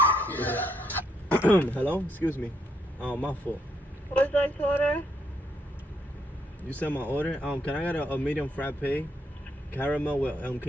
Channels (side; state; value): both; normal; correlation 0.74